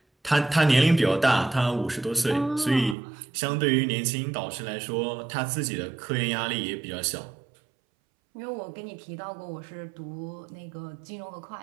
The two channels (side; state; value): left; drops out; at 3.0 s